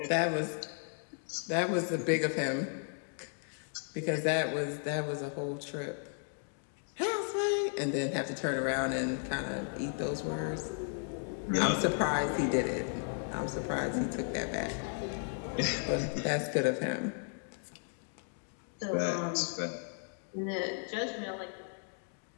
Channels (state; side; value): silent; right; 55 dB below the other